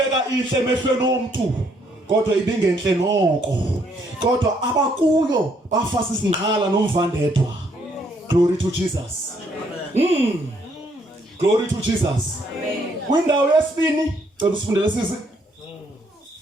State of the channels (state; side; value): normal; both; correlation 0.70